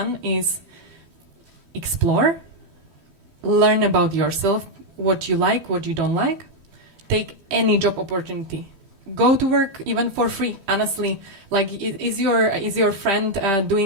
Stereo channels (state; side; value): late; left; 12 ms